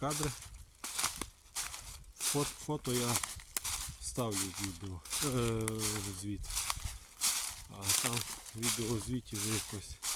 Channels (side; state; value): both; identical; correlation 1.00